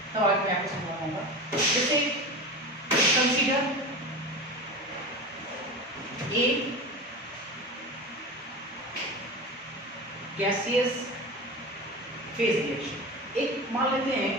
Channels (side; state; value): both; normal; correlation 0.28